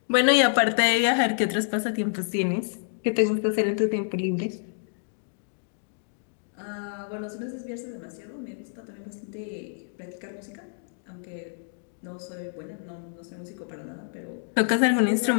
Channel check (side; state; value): right; silent; digital silence